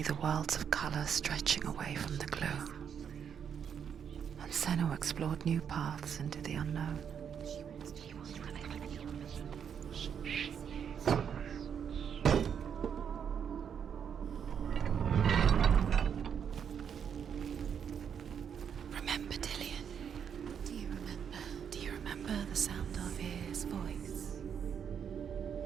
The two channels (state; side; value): quieter; left; 7.8 dB